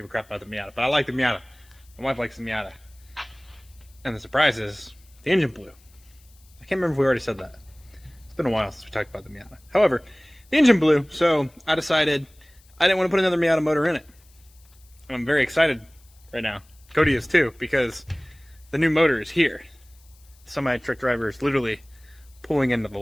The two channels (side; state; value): left; noise; hiss, 29 dB below the sound